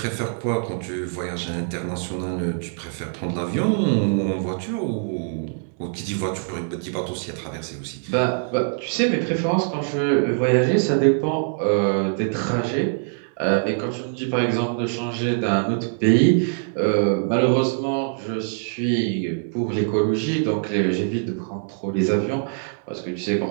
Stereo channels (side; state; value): left; silent; digital silence